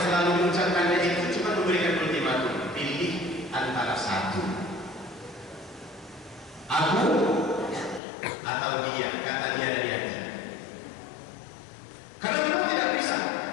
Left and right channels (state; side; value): drops out; right; at 8.0 s